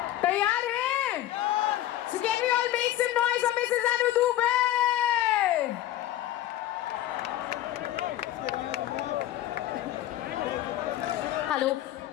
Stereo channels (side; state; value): right; quieter; 13.6 dB